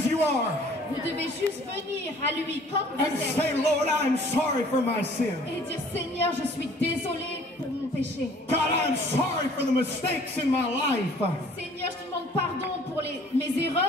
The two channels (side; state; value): both; normal; correlation 0.54